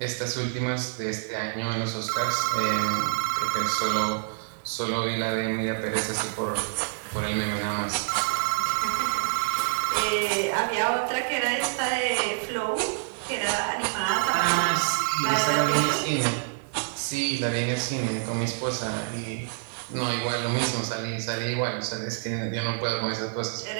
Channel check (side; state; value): left; silent; digital silence